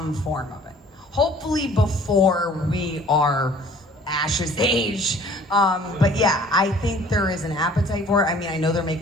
form of it. Hopefully before we are Ash's age. But yeah, I think there is an appetite for it. I mean, I know they're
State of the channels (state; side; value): normal; both; correlation 0.52